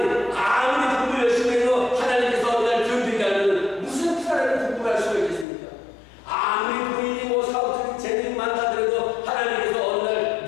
아무리 공부 열심히 해서 하나님께서 어느 날 견디게 하면 무슨 사람이 공부를 할 수가 있겠습니까? 아무리 본인이 뭐 사업적인 재능이 많다 그래도 하나님께서 어느 날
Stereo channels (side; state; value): right; drops out; at 5.5 s